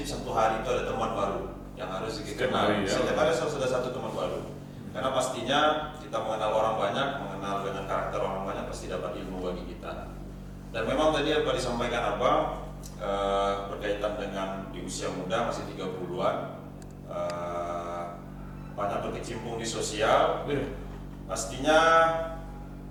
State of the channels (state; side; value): identical; both; correlation 1.00